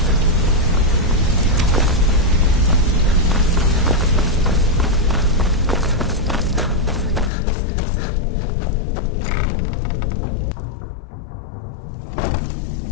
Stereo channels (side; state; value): right; drops out; at 7.3 s